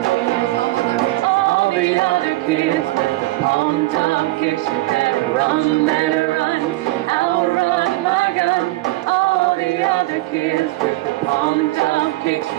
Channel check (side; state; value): left; quieter; 19.5 dB